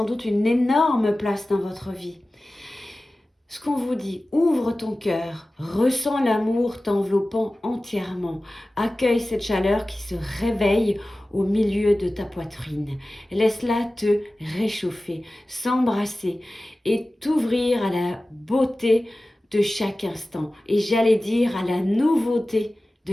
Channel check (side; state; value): both; normal; correlation 0.96